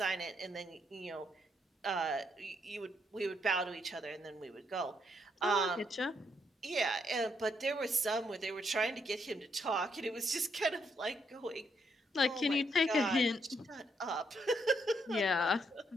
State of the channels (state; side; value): normal; both; correlation 0.75